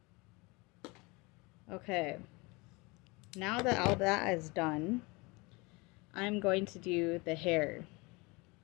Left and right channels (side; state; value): right; quieter; 26.0 dB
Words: Okay. Now that all that is done, I'm going to do the hair.